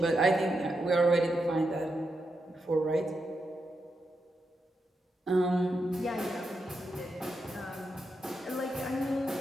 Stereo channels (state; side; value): normal; both; correlation 0.85